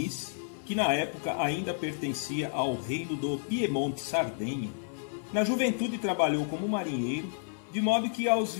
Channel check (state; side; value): silent; right; 55 dB below the other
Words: que na época ainda pertencia ao reino do Piemonte-Sardenha, na juventude trabalhou como marinheiro, de modo que aos